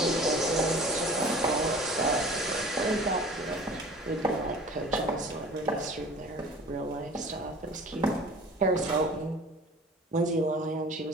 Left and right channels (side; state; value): both; normal; correlation 0.43